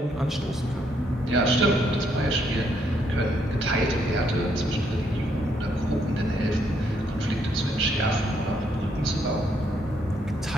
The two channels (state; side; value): normal; both; correlation 0.72